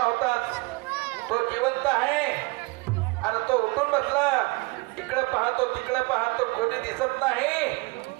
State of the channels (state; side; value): quieter; left; 25.5 dB